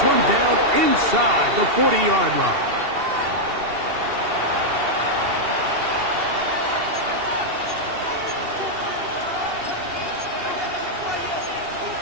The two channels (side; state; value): left; late; 2.7 ms